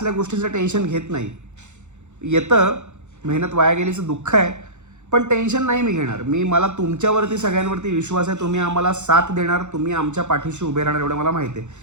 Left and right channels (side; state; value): left; late; 0.83 ms